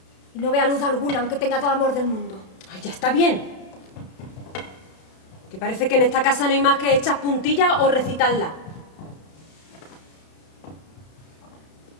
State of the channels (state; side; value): late; right; 32 ms